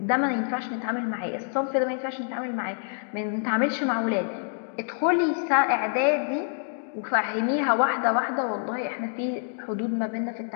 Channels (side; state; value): right; silent; digital silence